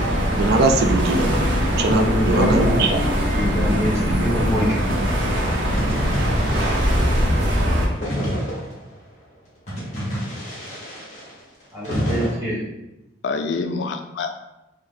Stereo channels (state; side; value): normal; both; correlation 0.62